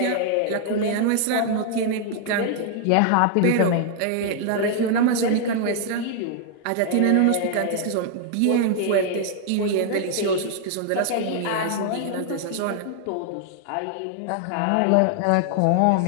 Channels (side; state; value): both; different; correlation 0.00